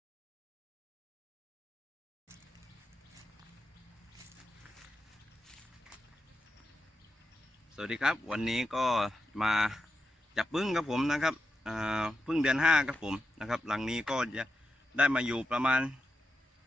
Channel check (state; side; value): normal; both; correlation 0.88